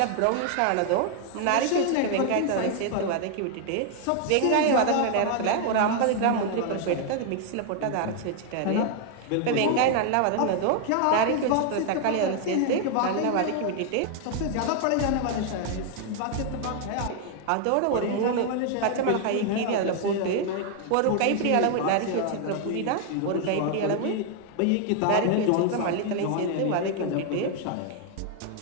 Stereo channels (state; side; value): different; both; correlation 0.00